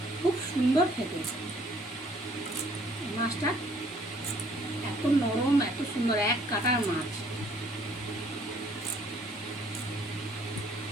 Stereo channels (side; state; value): both; normal; correlation 0.61